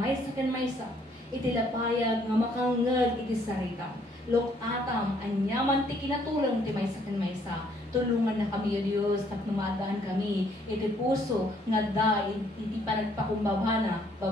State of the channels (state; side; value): normal; both; correlation 0.66